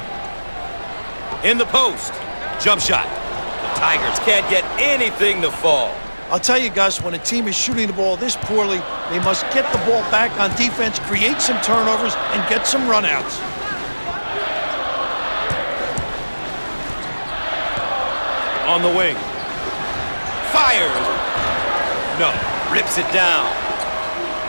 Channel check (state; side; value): inverted; both; correlation -1.00